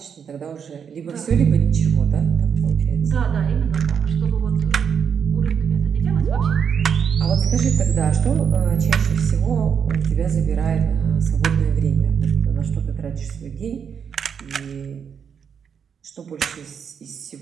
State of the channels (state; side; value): quieter; left; 7.2 dB